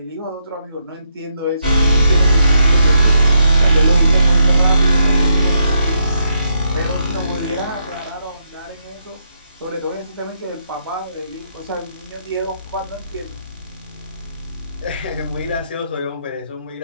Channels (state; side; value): inverted; both; correlation -0.78